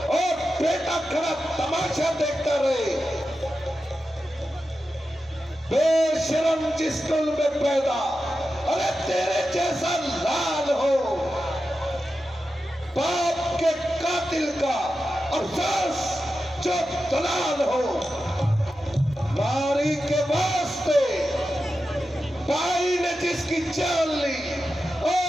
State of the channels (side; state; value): both; normal; correlation 0.91